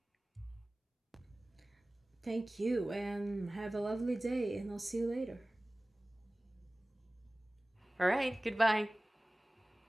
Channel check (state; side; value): normal; both; correlation 0.98